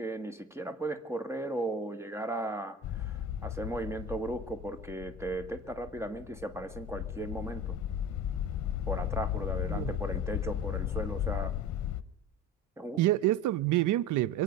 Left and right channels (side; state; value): both; normal; correlation 0.32